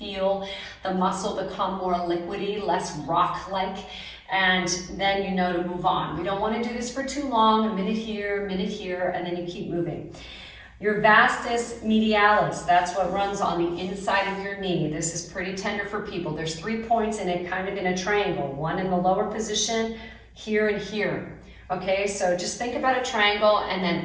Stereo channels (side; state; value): both; identical; correlation 1.00